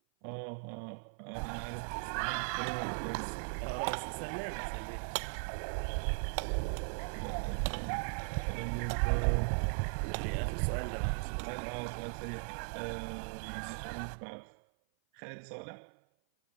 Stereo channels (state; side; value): silent; left; 52 dB below the other